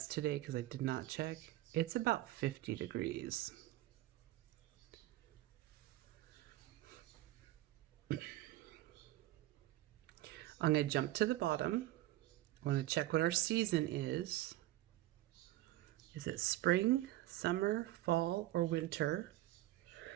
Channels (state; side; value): quieter; left; 15.8 dB